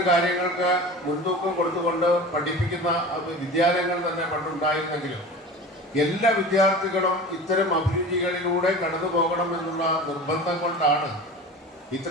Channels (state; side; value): normal; both; correlation 0.35